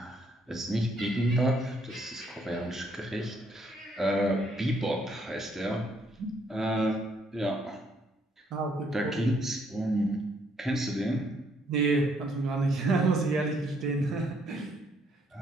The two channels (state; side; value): normal; both; correlation 0.69